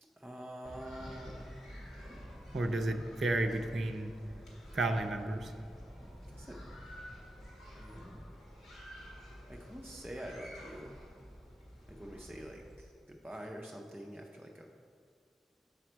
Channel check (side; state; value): both; normal; correlation 0.87